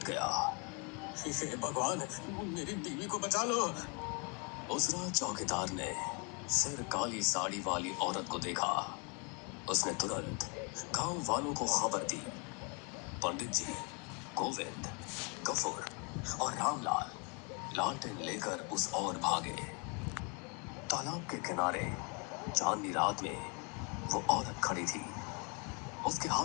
गया। हे भगवान, मेरी बीवी को बचा लो। उस रात चौकीदार ने फिर काली साड़ी वाली औरत को देखा। उसने तुरंत गांव वालों को खबर दी। पंडित जी, गोविंद, गफूर और रामलाल लालटेन लेकर उस ओर भागे। तालाब के किनारे चांदनी रात में वो औरत खड़ी थी। उसके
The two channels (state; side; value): quieter; right; 34.2 dB